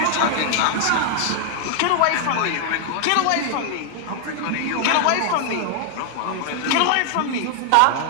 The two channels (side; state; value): both; different; correlation 0.00